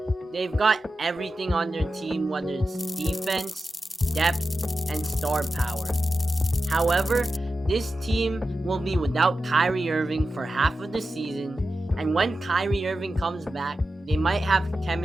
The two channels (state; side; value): normal; both; correlation 0.92